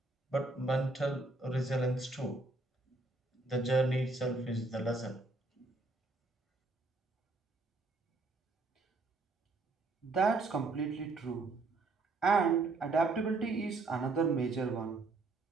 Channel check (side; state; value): left; quieter; 3.4 dB